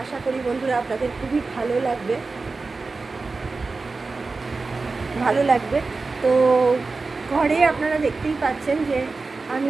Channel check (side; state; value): left; quieter; 3.9 dB